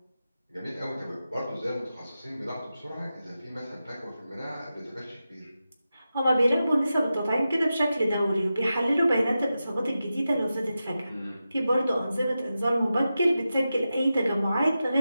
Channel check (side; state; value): both; inverted; correlation -0.91